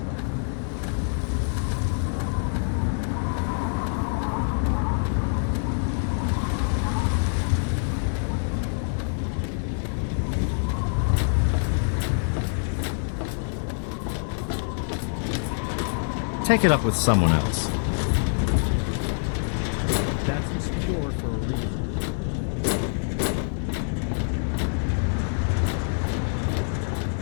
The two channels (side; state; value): right; silent; digital silence